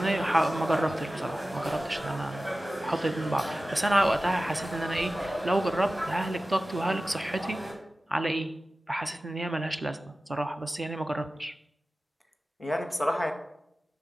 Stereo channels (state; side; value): normal; both; correlation 0.96